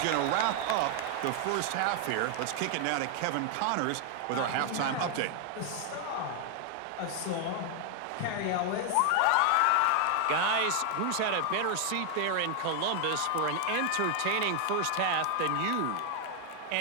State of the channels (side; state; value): both; different; correlation 0.00